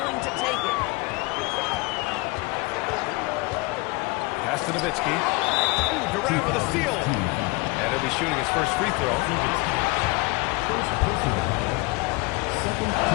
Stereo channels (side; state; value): right; quieter; 24.9 dB